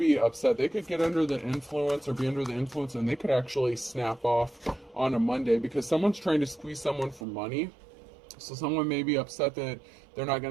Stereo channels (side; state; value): left; drops out; at 7.2 s